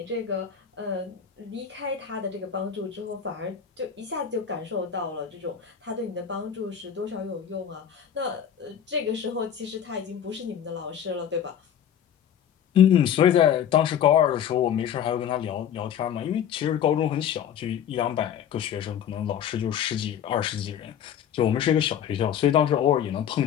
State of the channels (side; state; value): right; quieter; 9.0 dB